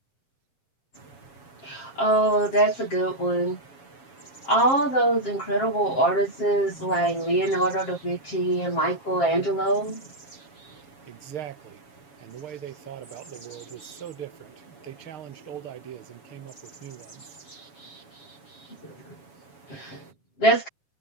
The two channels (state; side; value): late; right; 7.1 ms